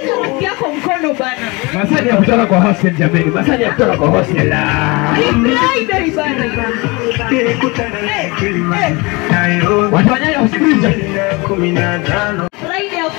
rafiki yako mkono bana. Masani ya kutoka kwa hostel jameni. Masani ya kutoka kwa hostel. Friday bana. Watu wanyaye usikiliza. Friday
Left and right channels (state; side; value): quieter; right; 25.8 dB